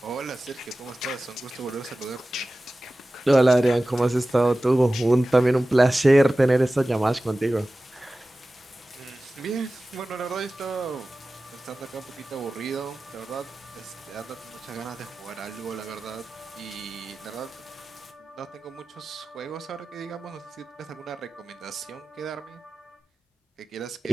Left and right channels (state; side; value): normal; both; correlation 0.96